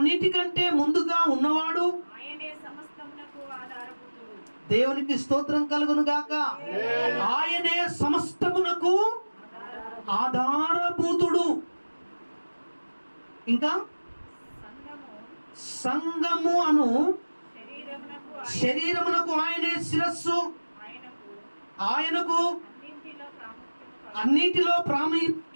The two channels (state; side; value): inverted; both; correlation -1.00